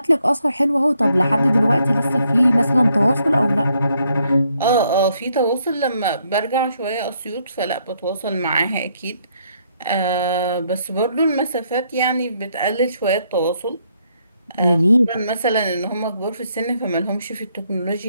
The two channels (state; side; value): inverted; both; correlation -0.72